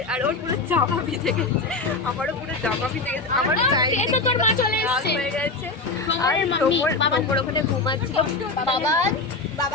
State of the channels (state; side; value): quieter; right; 3.6 dB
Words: আর ওর পুরো জামা ভিজে গেছে, আমারও পুরো জামা ভিজে গেছে, আমার তোর মা চলে এসেছে হয়ে গেছে। আর তোমর ওখানে ঘুমাচ্ছিল।